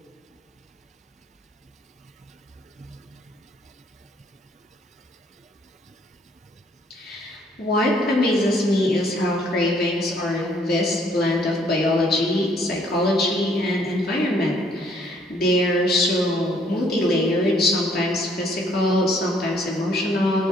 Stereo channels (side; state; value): both; normal; correlation 0.65